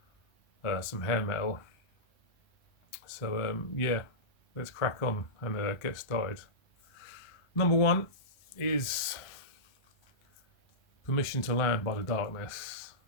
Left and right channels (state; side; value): late; right; 1.3 ms